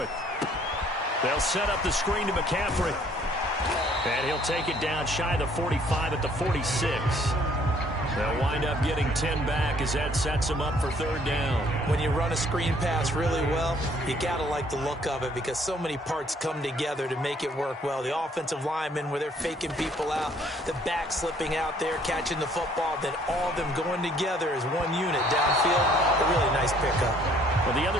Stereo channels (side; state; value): both; normal; correlation 0.61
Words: They'll set up the screen to McCaffrey. And he'll take it down shy of the 45 at the 46. They'll wind up getting 10 back as that sets them up for 3rd down. When you run a screen pass really well, you got to like the look of it, because so many parts come together to make it work well. The offensive linemen, where they're faking people out, the back slipping out there, catching the football, then all of them going together as one unit downfield. A really nice pickup. Well, the